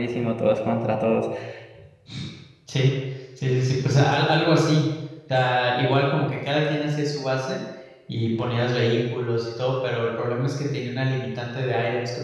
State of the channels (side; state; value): both; identical; correlation 1.00